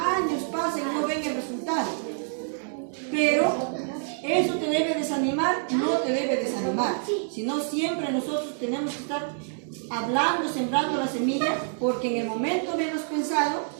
pasan y no ven el resultado. Pero eso te debe desanimar, no te debe desanimar, sino siempre nosotros tenemos que estar hablando, sembrando la semilla, porque en el momento menos pensado,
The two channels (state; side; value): silent; left; digital silence